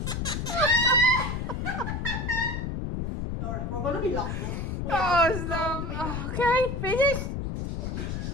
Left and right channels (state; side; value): noise; left; rumble, 3 dB below the sound